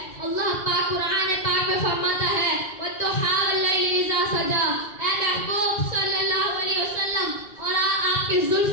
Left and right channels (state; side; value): late; right; 1.9 ms